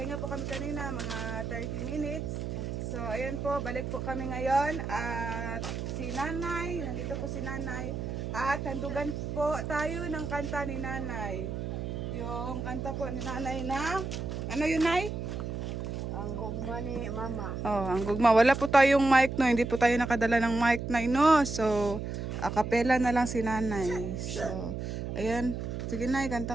po kami kanina mga 30 minutes. So ayan po, balik po kami ngayon at si Nanay, nandito po si Nanay. At handugan po tayo ng kanta ni Nanay. Yung kanta po ni Nanay na, ano yun Nay? Ang gugma ni Mama. Oh, ang gugma. Wala po tayong mic no, hindi po tayo nakadala ng mic Nay no. So, a cappella na lang si Nanay. So, ayan. Sige Nay,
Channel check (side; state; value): right; noise; hum, 4 dB below the sound